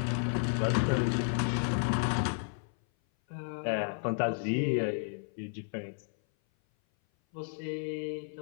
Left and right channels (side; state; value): right; silent; 56 dB below the other